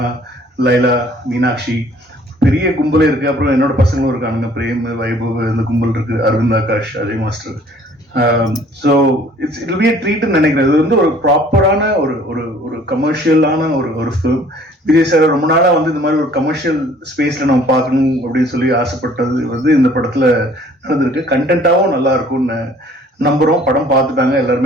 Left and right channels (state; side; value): normal; both; correlation 0.55